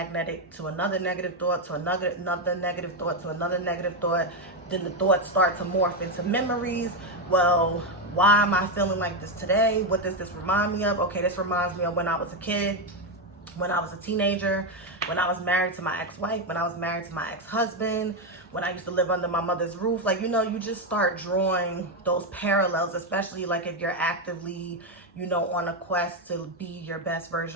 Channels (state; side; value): normal; both; correlation 0.07